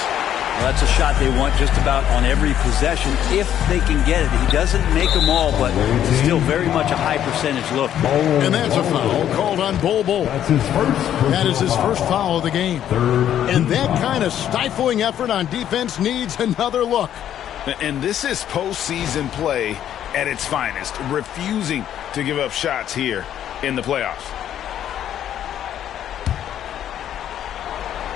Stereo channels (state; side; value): quieter; right; 10.6 dB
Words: Well, that's a shot they want just about on every possession if they can get it. He doesn't make them all, but still very much a high percentage look. And that's a foul called on Bol. That is his first foul of the game. And that kind of stifling effort on defense needs another look. And this is postseason play at its finest, refusing to give up shots here in the playoffs.